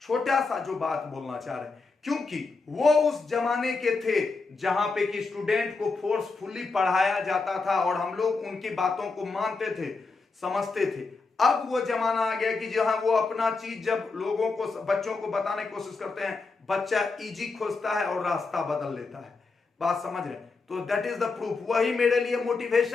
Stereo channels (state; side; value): quieter; right; 4.1 dB